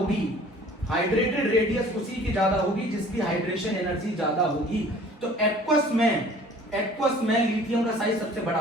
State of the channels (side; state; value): both; normal; correlation 0.50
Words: हाइड्रेटेड रेडियस उसी की ज्यादा होगी जिसकी हाइड्रेशन एनर्जी ज्यादा होगी। तो एक्वस में लिथियम का साइज सबसे बड़ा